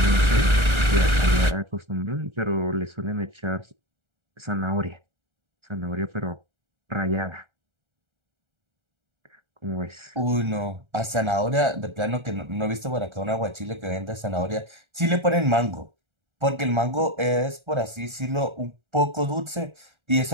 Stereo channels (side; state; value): left; late; 1.3 ms